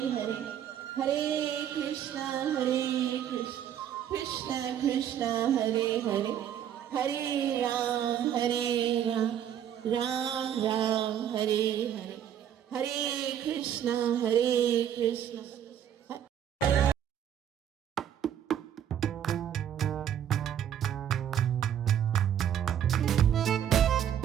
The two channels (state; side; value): quieter; left; 9.9 dB